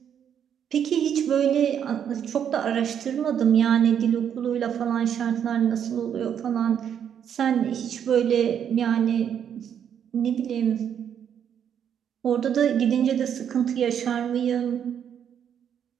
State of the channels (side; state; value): left; quieter; 8.7 dB